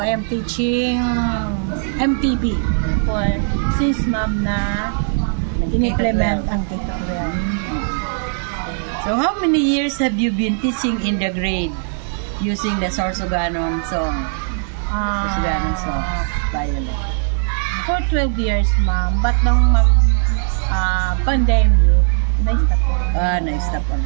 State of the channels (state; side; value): silent; left; 67 dB below the other